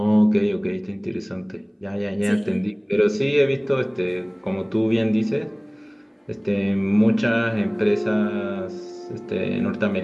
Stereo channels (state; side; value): identical; both; correlation 1.00